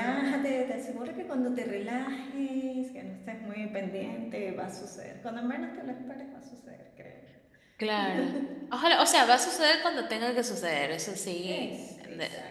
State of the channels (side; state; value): both; identical; correlation 1.00